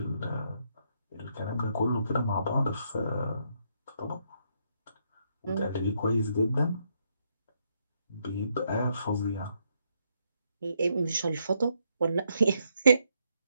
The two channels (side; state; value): both; inverted; correlation -0.76